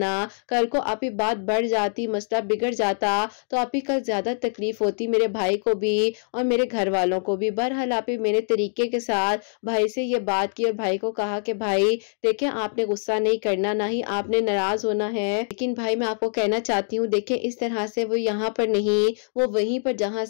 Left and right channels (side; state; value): right; silent; digital silence